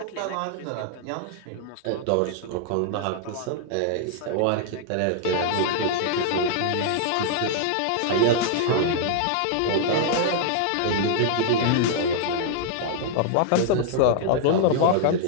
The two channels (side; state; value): both; different; correlation -0.01